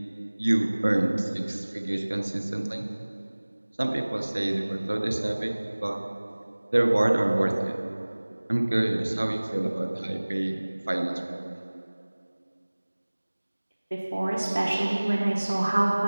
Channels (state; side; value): inverted; both; correlation -1.00